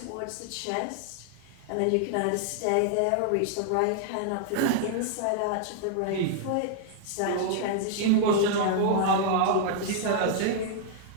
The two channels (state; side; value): different; both; correlation -0.01